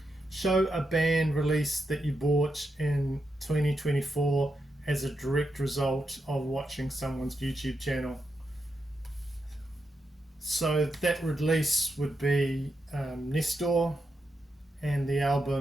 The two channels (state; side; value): normal; both; correlation 0.85